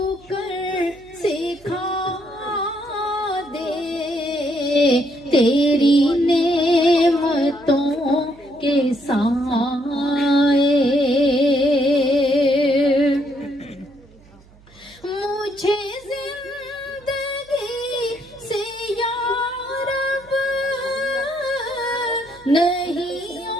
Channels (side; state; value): right; noise; hum, 26 dB below the sound